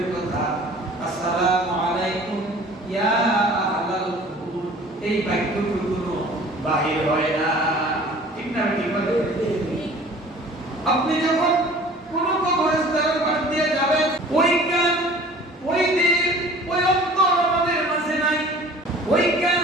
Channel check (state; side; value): normal; both; correlation 0.47